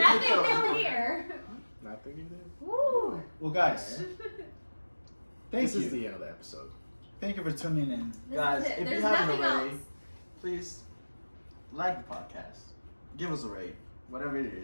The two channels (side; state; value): both; inverted; correlation -1.00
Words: new here. Nothing you did. Woo. Well, guys, thank This you. is the end of the episode. Thank you for tuning in. This Guys, is it. if There's you haven't nothing already, else. please like the podcast. Give us a rate, whatever it